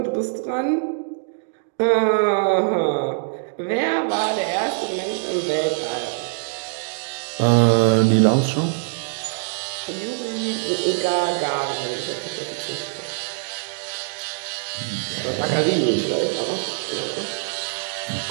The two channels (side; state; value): left; silent; digital silence